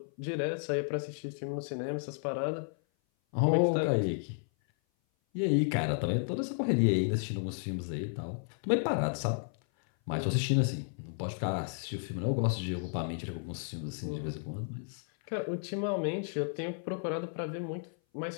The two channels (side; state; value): right; silent; 56 dB below the other